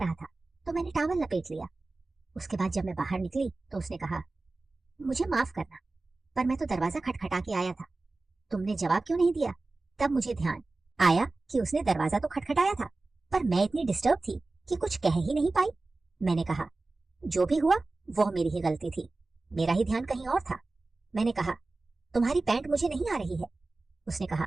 था, तो मैंने टॉवल लपेट लिया। उसके बाद जब मैं बाहर निकली तो उसने कहा, मुझे माफ करना, पर मैं तो दरवाजा खटखटा के आया था। तुमने जवाब क्यों नहीं दिया? तब मुझे ध्यान आया कि उसने दरवाजा तो खटखटाया था, पर मैं इतनी डिस्टर्ब थी कि कुछ कह ही नहीं पाई। मैंने कहा, जो भी हुआ वह मेरी ही गलती थी, मेरा ही ध्यान कहीं और था। मैंने कहा, तुम्हारी पैंट मुझे नहीं आ रही है। उसने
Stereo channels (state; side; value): quieter; left; 3.3 dB